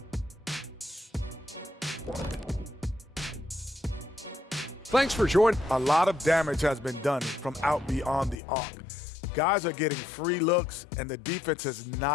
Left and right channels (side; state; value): right; drops out; at 8.4 s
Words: Thanks for joining. A lot of damage has been done from out beyond the arc. Guys are getting free looks, and the defense has